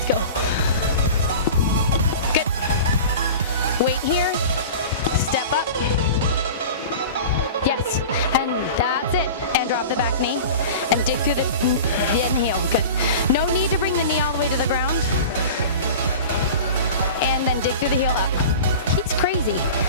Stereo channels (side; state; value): both; inverted; correlation -0.35